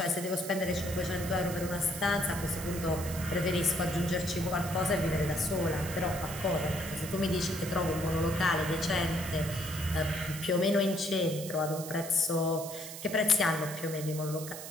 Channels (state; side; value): noise; right; hiss, 10 dB below the sound